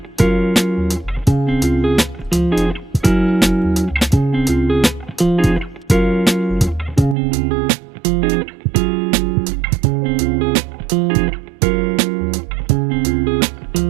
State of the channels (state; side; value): drops out; left; at 7.2 s